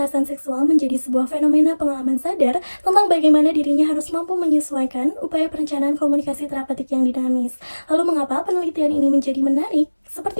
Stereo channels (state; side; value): inverted; both; correlation -1.00